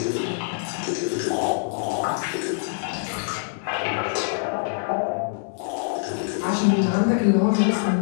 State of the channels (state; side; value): silent; right; 62 dB below the other